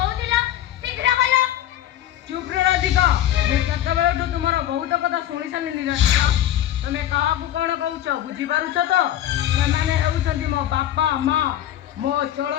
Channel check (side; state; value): right; quieter; 12.3 dB